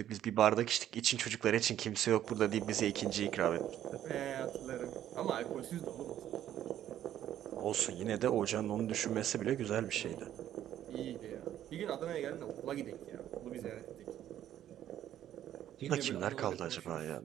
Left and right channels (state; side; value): quieter; left; 11.5 dB